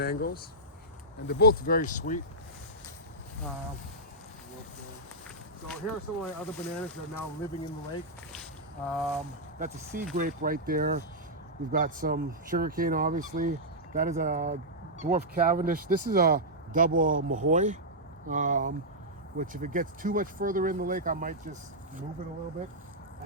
and they're both very sweet. So here are some of my other bananas that are now living in the lake. That's a sea grape right there. We've got some sugarcane, obviously. That is a dwarf Cavendish. This is a double Mahoy, which if it gets too much further in the lake, I might just move it a little bit. I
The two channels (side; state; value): both; normal; correlation -0.09